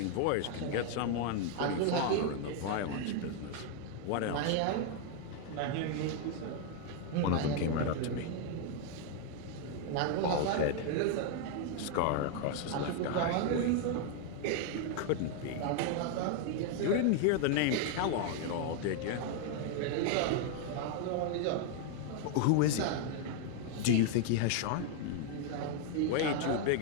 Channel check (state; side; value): different; both; correlation 0.00